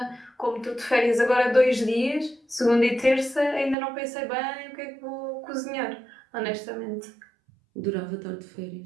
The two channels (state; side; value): drops out; left; at 3.8 s